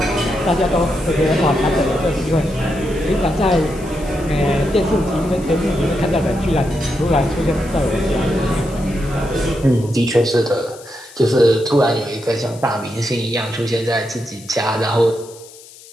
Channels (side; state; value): left; noise; hiss, 20 dB below the sound